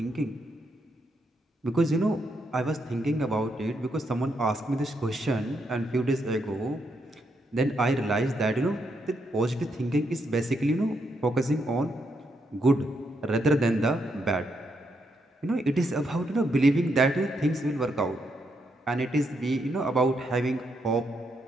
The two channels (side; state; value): both; normal; correlation 0.79